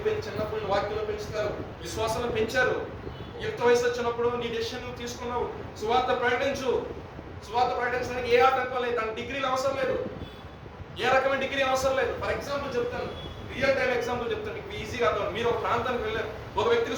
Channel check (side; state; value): both; identical; correlation 1.00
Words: చిన్నప్పుడు వాక్యంలో పెంచుతారు, విశ్వాసంలో పెంచారు. యుక్త వయసు వచ్చినప్పుడు నీ డెసిషన్ నువ్వు తీసుకున్నావు, సువార్త ప్రకటించు. సువార్త ప్రకటించడానికి ఏ ఆటంకం లేదు, దానికి డిగ్రీలు అవసరం లేదు, ఏ రకమైన డిగ్రీ అవసరం లేదు. ఫర్ ఎగ్జాంపుల్ చెప్తాను, రియల్ టైం ఎగ్జాంపుల్ చెప్తాను, మీకు ఈజీగా అర్థం. మీరు ఒక ప్రాంతానికి వెళ్ళారు, ఒక వ్యక్తికి